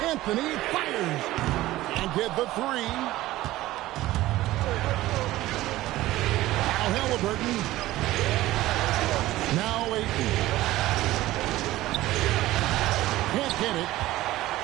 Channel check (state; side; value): quieter; left; 16.4 dB